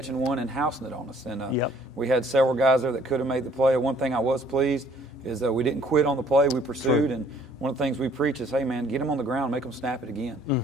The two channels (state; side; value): normal; both; correlation 0.59